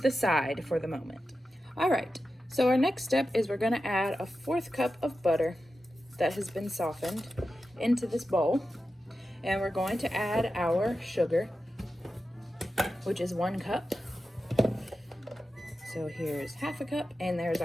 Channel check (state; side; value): normal; both; correlation 0.91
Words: side for the moment. All right, so our next step is we're going to add a 1/4 cup of butter that has been softened into this bowl, and we're going to add our sugar, which is 1 cup. So here's 1/2 cup, and there's